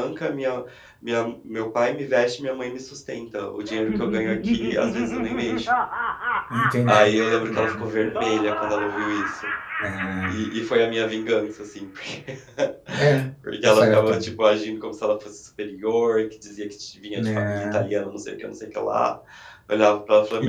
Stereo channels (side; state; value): both; identical; correlation 1.00